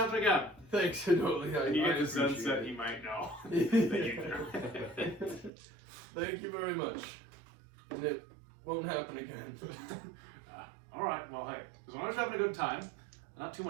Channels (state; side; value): drops out; left; at 5.5 s